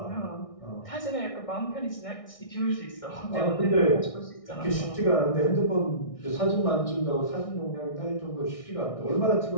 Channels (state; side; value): late; right; 1.6 ms